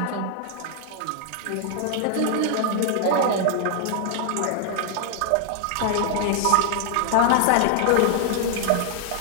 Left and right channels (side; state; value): both; different; correlation 0.00